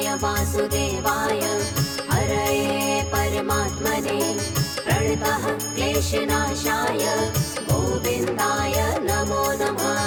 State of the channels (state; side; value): identical; both; correlation 1.00